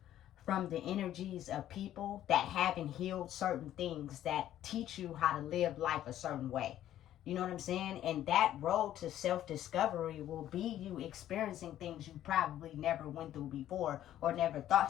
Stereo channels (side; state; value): right; quieter; 12.2 dB